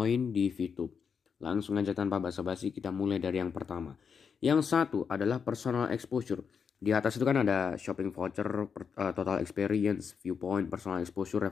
di VTube. Langsung aja tanpa basa-basi kita mulai dari yang pertama. Yang satu adalah personal exposure. Di atas itu kan ada shopping voucher, total experience, viewpoint, personal exposure,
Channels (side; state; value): right; quieter; 6.4 dB